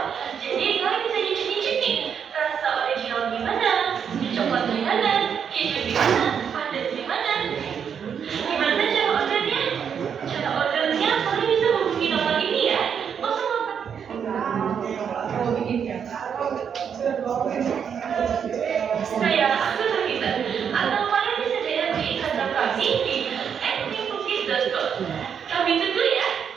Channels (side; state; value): left; quieter; 7.5 dB